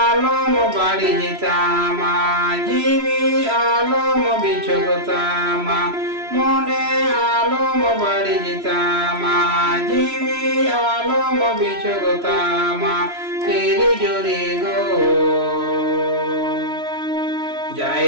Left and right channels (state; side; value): late; left; 3.0 ms